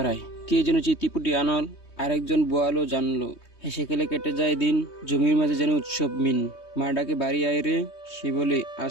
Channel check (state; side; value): late; right; 3.2 ms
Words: কে যেন চিতিপুটি আনল, আরেকজন বোয়ালো জানলো। হেসে খেলে কেটে যায় দিন, জমির মাঝে যেন উৎসব মিন। মা ডাকে বাড়ি আয় রে, সে বলে